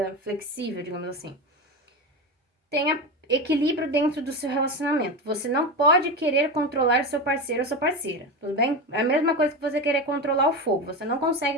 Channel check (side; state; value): both; normal; correlation 0.20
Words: flexível, digamos assim. Tenha equilíbrio dentro do seu relacionamento. Você não pode querer controlar seu parceiro ou sua parceira, tudo bem? É a mesma coisa que você querer controlar o fogo. Você não